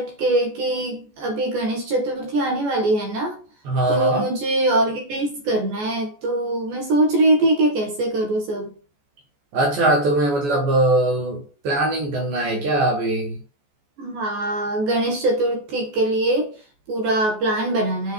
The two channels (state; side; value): late; left; 14 ms